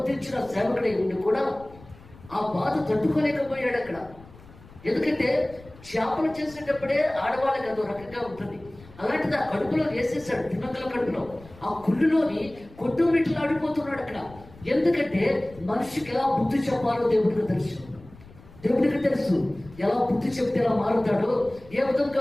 సేవకుడై ఉండి కూడా ఆ బాధ తట్టుకోలేకపోయాడు అక్కడ. ఎందుకంటే చేపలు చేసేటప్పుడే ఆడవాళ్ళకి అదో రకంగా ఉంటుంది. అలాంటిది ఆ కడుపులో వేసేసాడు, తిమ్మంతుల కడుపులో. ఆ కుళ్ళులోని కొట్టుమిట్లు ఆడిపోతున్నాడు అక్కడ. ఎందుకంటే మనిషికి ఎలా బుద్ధి చెప్పాలో దేవుడికి తెలుసు. దేవుడికి తెలుసు ఎలా బుద్ధి చెప్తే ఎలా మారుతాడో, ఏ విధంగా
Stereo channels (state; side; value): noise; left; rumble, 22 dB below the sound